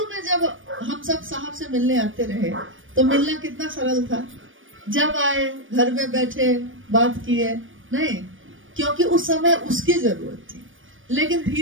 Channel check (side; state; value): left; late; 0.57 ms